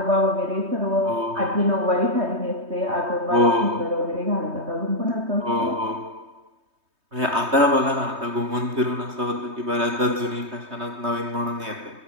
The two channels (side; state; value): left; late; 3.2 ms